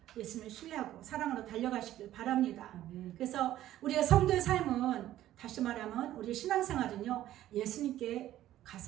예수님을 신뢰하고 사랑으로 달려가시길 바랍니다. 그래서 우리의 성도의 삶은 다시 말하면 우리의 신앙생활은요, 예수님께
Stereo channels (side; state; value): left; quieter; 13.3 dB